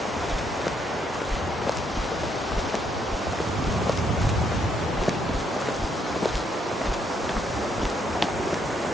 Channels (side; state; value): both; normal; correlation 0.73